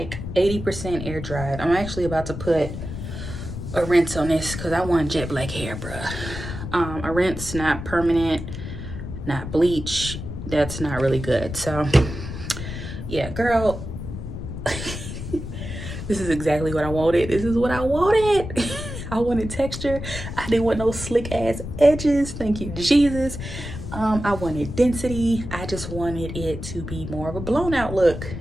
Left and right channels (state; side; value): noise; left; rumble, 8 dB below the sound